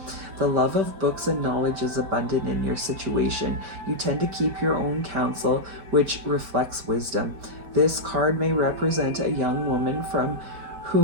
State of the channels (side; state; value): left; late; 5.1 ms